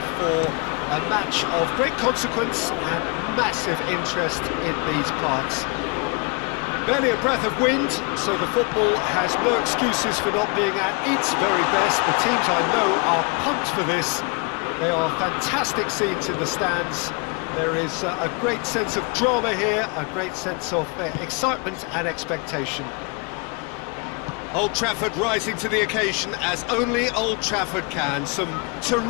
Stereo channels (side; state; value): right; quieter; 31.5 dB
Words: for a match of great consequence and massive interest in these parts. Barely a breath of wind, so the football has no excuses for not being at its very best. The teams I know are pumped for this. They are fantastic scenes in the stands. There is a great sense of drama here, a great sense of excitement and expectation. Old Trafford rising to the occasion as only Old Trafford can. Some